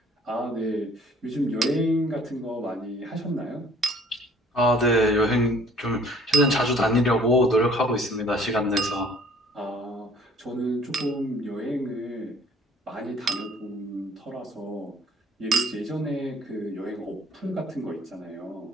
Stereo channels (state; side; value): normal; both; correlation 0.54